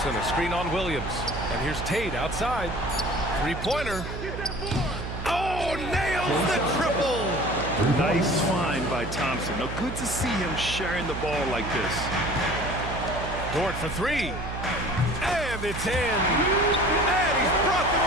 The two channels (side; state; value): right; noise; hum, 7 dB below the sound